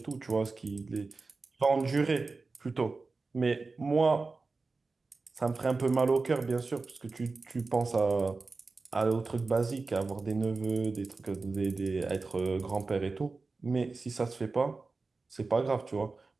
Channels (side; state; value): left; quieter; 3.9 dB